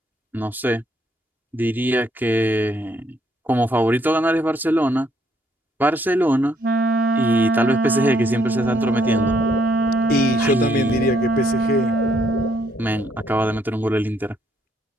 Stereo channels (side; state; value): both; normal; correlation 0.71